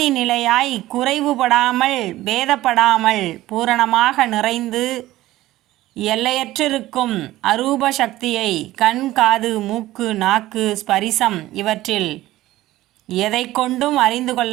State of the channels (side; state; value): left; quieter; 16.1 dB